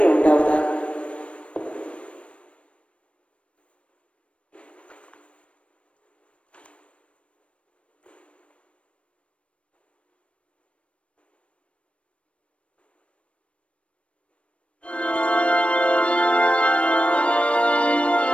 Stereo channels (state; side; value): late; right; 0.061 ms